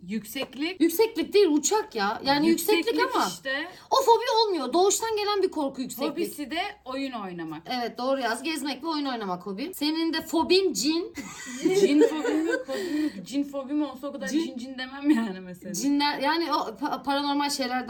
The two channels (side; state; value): both; identical; correlation 1.00